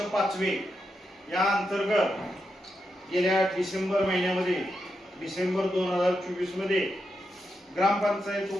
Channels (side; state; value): both; normal; correlation 0.85